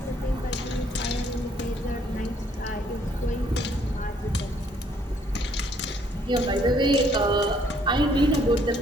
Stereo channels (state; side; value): normal; both; correlation 0.65